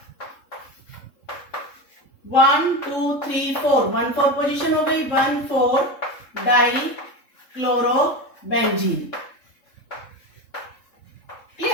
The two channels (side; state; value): right; late; 3.7 ms